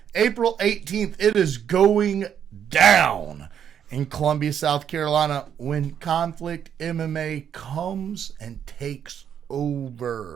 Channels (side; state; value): left; quieter; 8.8 dB